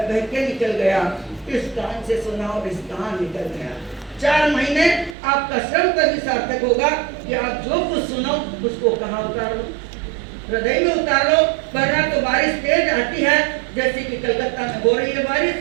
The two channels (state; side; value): drops out; left; at 5.2 s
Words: बह के निकल गया, इस कान से सुना और इस कान निकल गया। 4 महीने आपका श्रम तभी सार्थक होगा कि आप जो कुछ सुनो उसको कहाँ उतारो? हृदय में उतार लो। वरना तो बारिश तेज आती है, जैसे कि कलकत्ता में हो रही है बारिश,